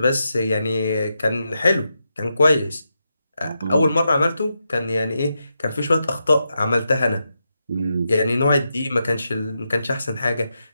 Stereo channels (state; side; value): inverted; both; correlation -0.86